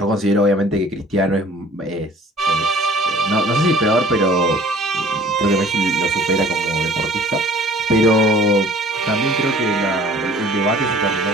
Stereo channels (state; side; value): normal; both; correlation 0.51